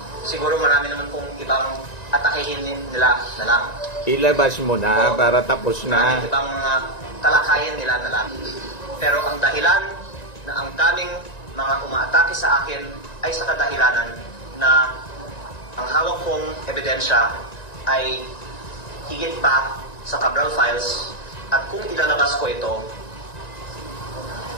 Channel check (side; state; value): right; late; 1.9 ms